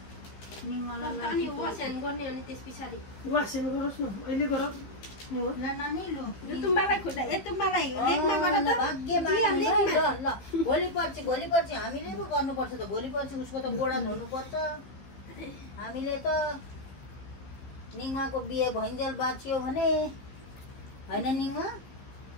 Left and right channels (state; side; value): late; right; 15 ms